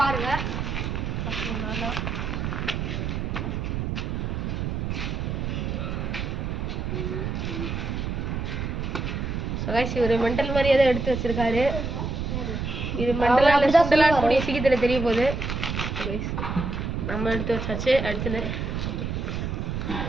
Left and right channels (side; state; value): right; noise; rumble, 2 dB below the sound